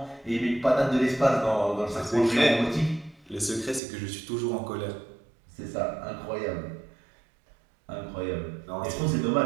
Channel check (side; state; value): left; drops out; at 3.8 s